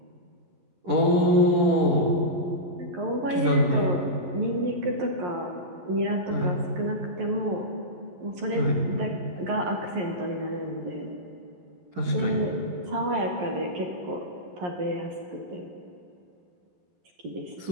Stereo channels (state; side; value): late; left; 11 ms